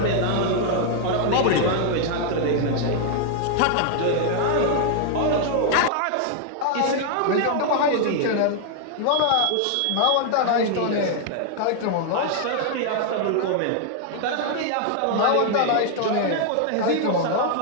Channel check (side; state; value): both; different; correlation 0.00